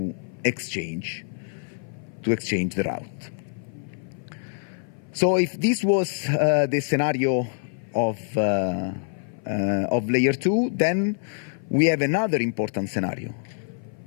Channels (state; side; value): silent; right; 56 dB below the other